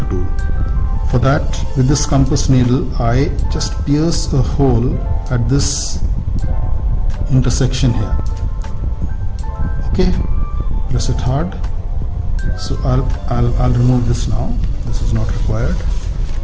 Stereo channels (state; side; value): identical; both; correlation 1.00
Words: For that, with this compass needle, I just pierce a hole at this intersection here. Okay, press it hard. So I'll remove this now. This is not required.